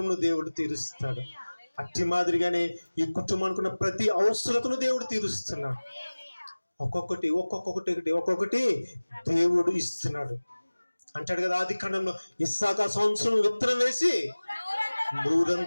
దేవుడు తీరుస్తాడు. అట్టి మాదిరిగానే ఈ కుటుంబానికి ఉన్న ప్రతి అవసరతను దేవుడు తీరుస్తున్నాడు. ఒక్కొక్కటి దేవుడు ఇస్తున్నాడు. అంటాడు కదా ఆది కాండంలో, ఇస్సాకు సంవత్సరం విత్తనం వేసి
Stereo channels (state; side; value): inverted; both; correlation -1.00